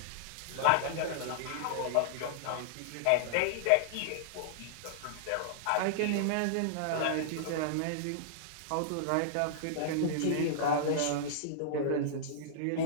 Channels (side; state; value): both; different; correlation -0.01